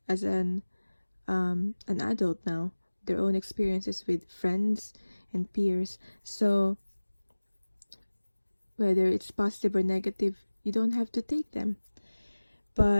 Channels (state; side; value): inverted; both; correlation -1.00